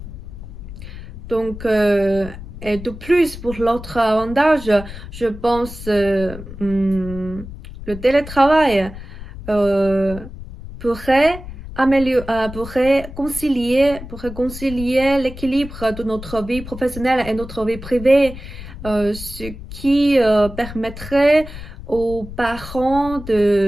Donc, et de plus, pour l'autre avantage, je pense le télétravail euh, pourrait pourrait concilier l'équilibre de notre vie professionnelle et notre vie privée, ce qui permettrait aux parents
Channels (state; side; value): noise; left; rumble, 13 dB below the sound